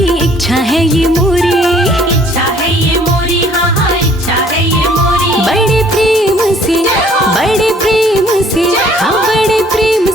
इच्छा है ये मोरी। इच्छा है ये मोरी, हाँ हाँ इच्छा है ये मोरी। बड़े प्रेम से, बड़े प्रेम से, हाँ बड़े प्रेम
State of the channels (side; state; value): both; normal; correlation 0.59